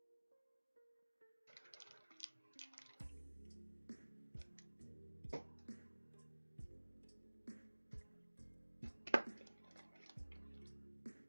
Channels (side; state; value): both; inverted; correlation -1.00